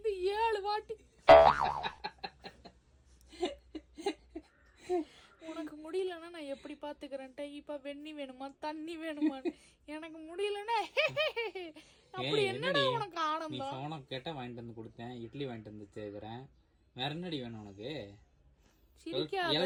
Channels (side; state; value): both; identical; correlation 1.00